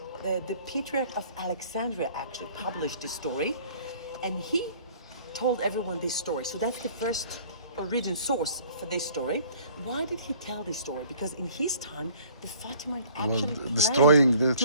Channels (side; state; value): both; inverted; correlation -0.53